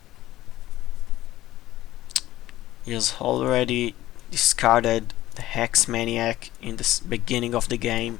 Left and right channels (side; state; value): right; quieter; 15.2 dB